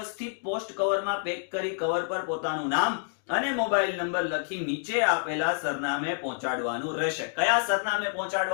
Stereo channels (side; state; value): right; silent; digital silence